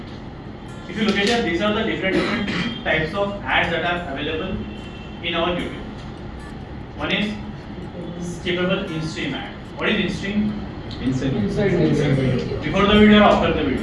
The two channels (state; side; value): identical; both; correlation 1.00